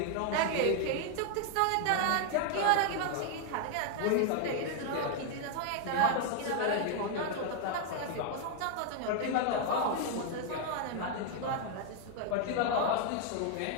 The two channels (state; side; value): different; both; correlation 0.00